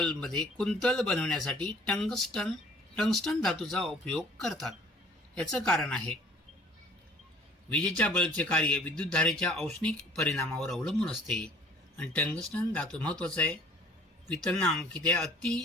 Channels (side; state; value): both; normal; correlation 0.52